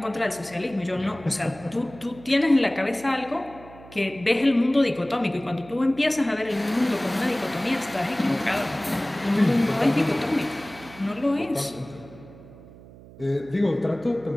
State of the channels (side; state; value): right; noise; hum, 20 dB below the sound